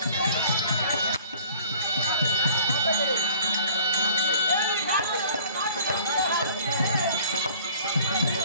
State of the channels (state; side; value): inverted; both; correlation -0.51